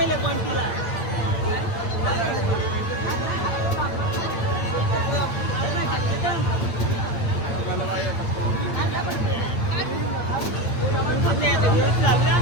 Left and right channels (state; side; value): late; right; 8.9 ms